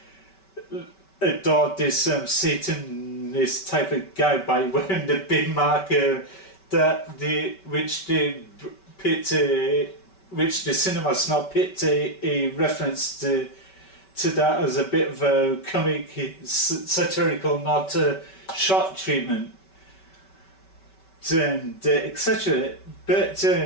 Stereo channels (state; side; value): late; right; 5.2 ms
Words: adore this Satanist type of guy by wearing the big marker which the Cinema Snob picked a reference to that as a bit of a comic satirical nod to shot treatment and etc. But